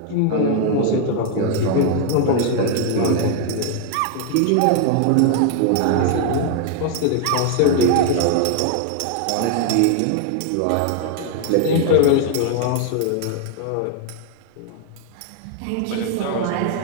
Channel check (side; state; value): both; different; correlation 0.00